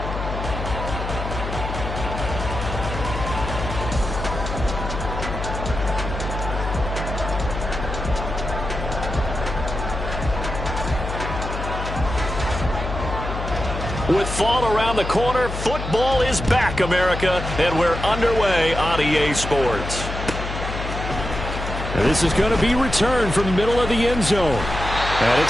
With fall around the corner, football is back, America, and we're underway on EA Sports. And this is going to be returned from the middle of the end zone. And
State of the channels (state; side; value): noise; left; hum, 6 dB below the sound